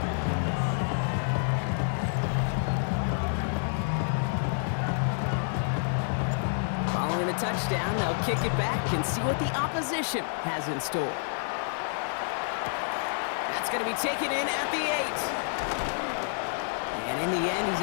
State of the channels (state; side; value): silent; right; 58 dB below the other